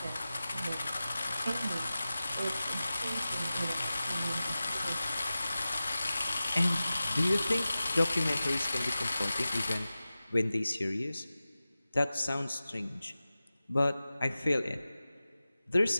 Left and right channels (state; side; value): inverted; both; correlation -0.96